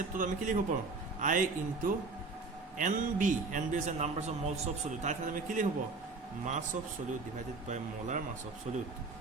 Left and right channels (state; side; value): quieter; left; 3.9 dB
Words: to আমি কি লিখিব পাৰোঁ I into NB is the numbers of moles of solute. তাই আমি কি লিখিব mass of solute divided by molar mass of solute